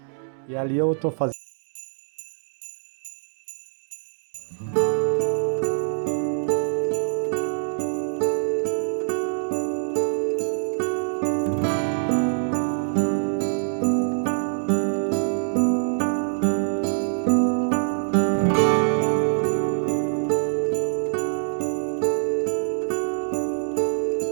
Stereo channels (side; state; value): left; silent; digital silence